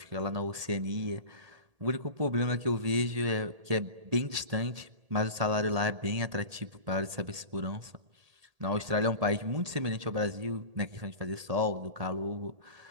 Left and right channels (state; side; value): late; left; 1.8 ms